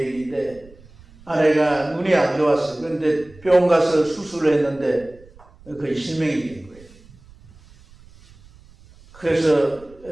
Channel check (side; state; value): right; noise; rumble, 24 dB below the sound